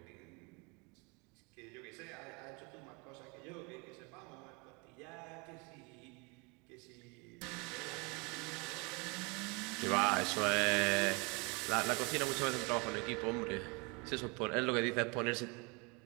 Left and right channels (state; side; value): quieter; left; 30.4 dB